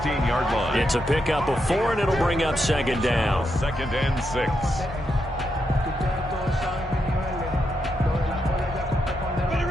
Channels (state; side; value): normal; both; correlation 0.83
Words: line. It's a pickup of 4, and it'll bring up 2nd down. 2nd and 6.